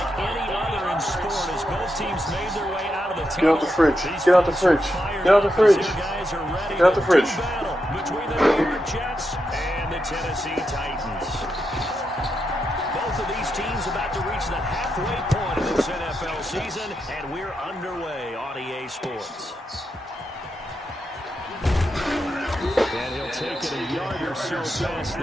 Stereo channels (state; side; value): normal; both; correlation 0.85